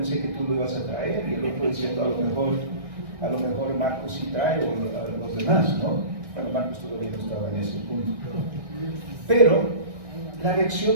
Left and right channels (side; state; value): left; late; 1.6 ms